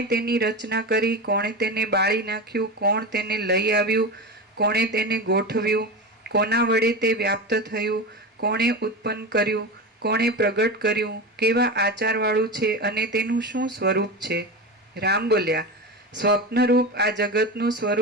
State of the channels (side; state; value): both; normal; correlation 0.23